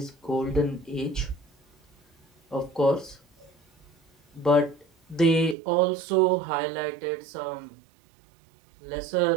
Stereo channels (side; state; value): left; drops out; at 5.6 s